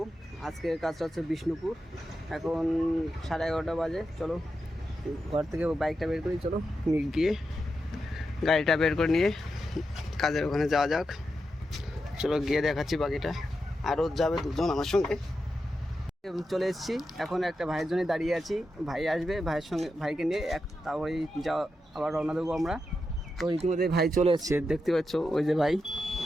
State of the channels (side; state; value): both; normal; correlation 0.88